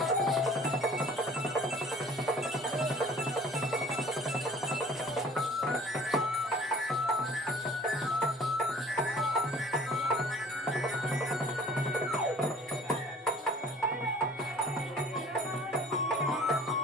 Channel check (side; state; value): both; normal; correlation 0.50